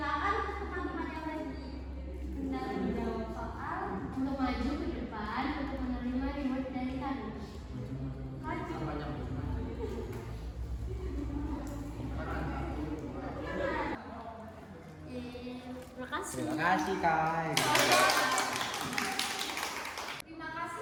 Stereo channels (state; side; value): identical; both; correlation 1.00